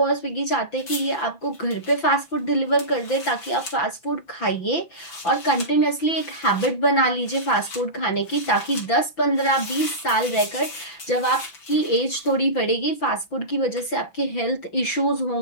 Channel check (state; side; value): late; right; 5.9 ms